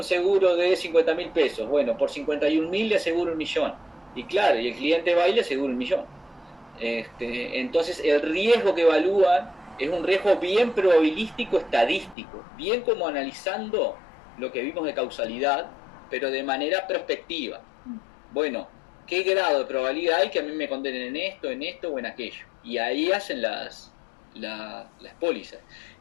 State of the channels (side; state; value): right; drops out; at 12.2 s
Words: seguro de $50.000, bueno, por 51.000 le aseguro $1.000.000. Y claro, y el cliente va y le asegura $1.000.000. Entonces el riesgo que evalúan es un riesgo bien probabilístico, estadístico, bien como analizando lo que vimos de causalidad, pero de manera prospectiva. Bueno, ¿qué grado de probabilidad hay que a mí me condenen en esto o en aquello? Y ahí hacen las pólizas.